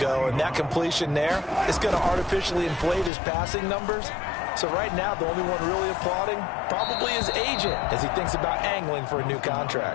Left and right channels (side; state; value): right; drops out; at 3.1 s